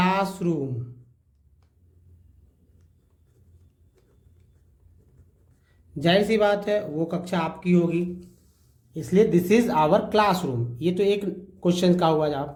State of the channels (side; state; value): both; identical; correlation 1.00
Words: जाहिर सी बात है वो कक्षा आपकी होगी, इसलिए दिस इज आवर क्लासरूम। ये तो एक क्वेश्चन का हुआ